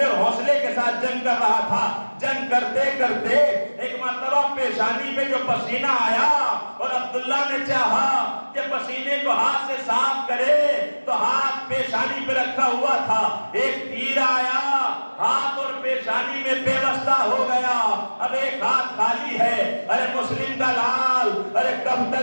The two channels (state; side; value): inverted; both; correlation -1.00